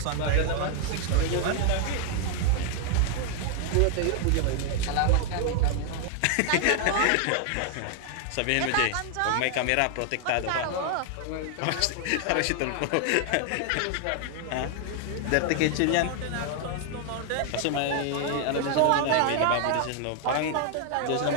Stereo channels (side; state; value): both; different; correlation 0.00